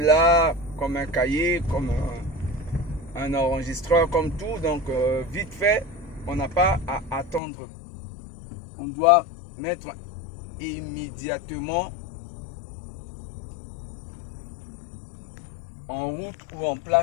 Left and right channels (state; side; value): drops out; right; at 7.4 s